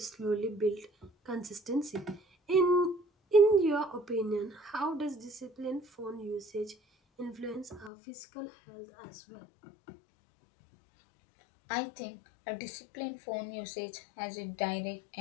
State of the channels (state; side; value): drops out; right; at 7.9 s